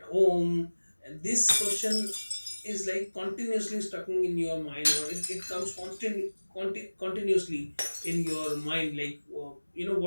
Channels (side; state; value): both; inverted; correlation -1.00